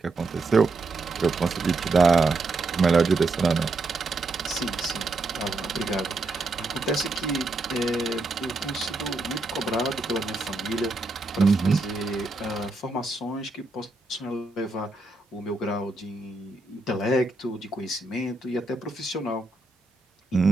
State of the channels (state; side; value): quieter; left; 3.2 dB